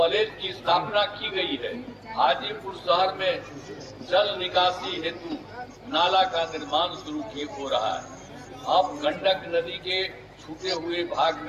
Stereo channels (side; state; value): both; identical; correlation 1.00